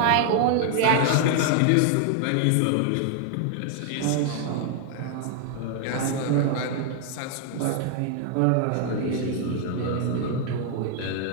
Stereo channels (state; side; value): different; both; correlation 0.00